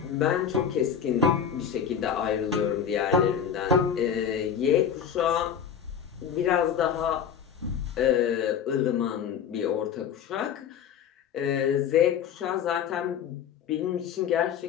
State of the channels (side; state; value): right; quieter; 8.0 dB